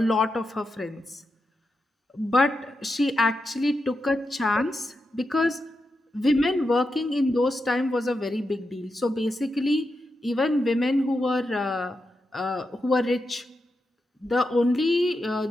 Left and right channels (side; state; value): both; normal; correlation 0.87